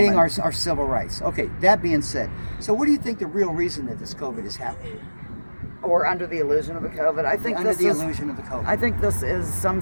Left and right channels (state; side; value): inverted; both; correlation -1.00